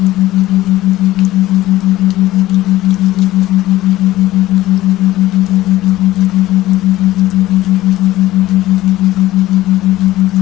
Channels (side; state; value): right; quieter; 16.1 dB